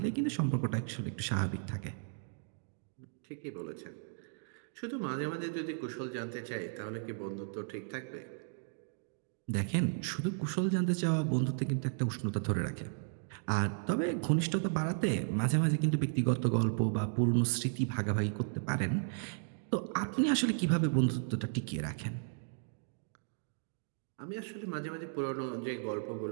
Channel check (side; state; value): left; silent; digital silence